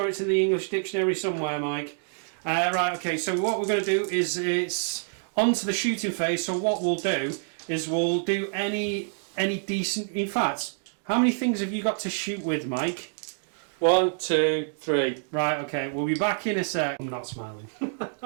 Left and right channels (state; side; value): silent; left; digital silence